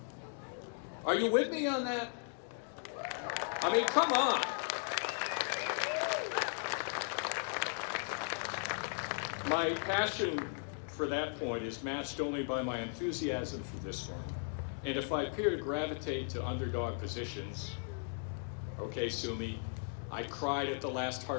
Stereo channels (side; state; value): right; silent; 53 dB below the other